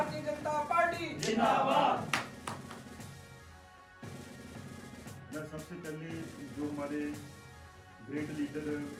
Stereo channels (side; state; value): both; identical; correlation 1.00